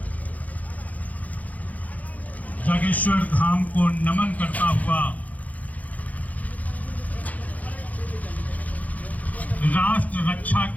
जागेश्वर धाम को नमन करता हुआ राष्ट्र रक्षा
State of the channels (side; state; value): right; late; 0.076 ms